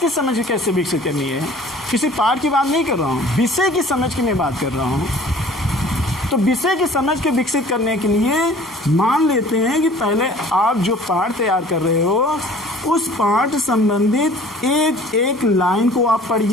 समझ कैसे विकसित करनी है, किसी पाठ की बात नहीं कर रहा हूँ, विषय की समझ की मैं बात कर रहा हूँ। तो विषय की समझ के विकसित करने के लिए मान लेते हैं कि पहले आप जो पाठ तैयार कर रहे हो उस पाठ संबंधित एक एक लाइन को आप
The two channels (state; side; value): normal; both; correlation 0.49